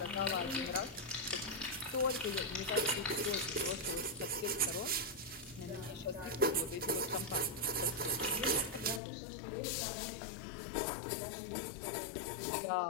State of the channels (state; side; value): drops out; right; at 9.0 s